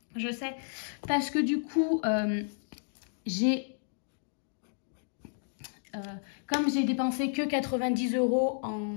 je sais. Parce que du coup, comme j'ai dépensé que 90 €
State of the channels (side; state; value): right; silent; digital silence